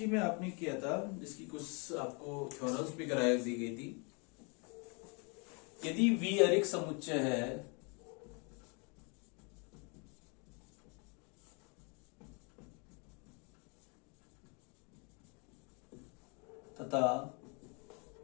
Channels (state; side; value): quieter; right; 33.6 dB